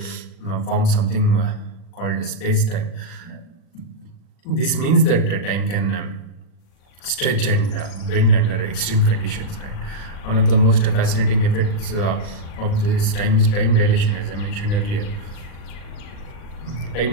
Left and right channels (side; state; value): right; late; 39 ms